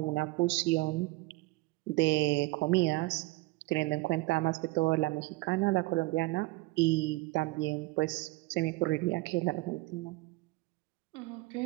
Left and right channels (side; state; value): left; quieter; 21.7 dB